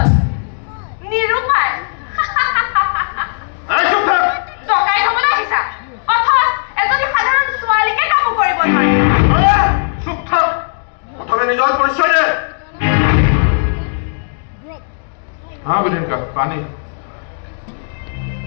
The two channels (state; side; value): silent; right; digital silence